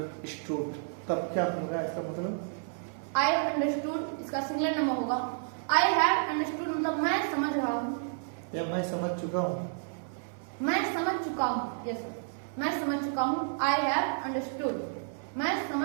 तब क्या होगा इसका मतलब? आई हैव अंडरस्टूड इसका सिंगुलर नंबर होगा आई हैव अंडरस्टूड मतलब मैं समझ रहा हूँ या मैं समझ चुका हूँ। मैं समझ चुका हूँ। यस सर, मैं समझ चुका हूँ। आई हैव अंडरस्टूड, मैं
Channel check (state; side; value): silent; left; 57 dB below the other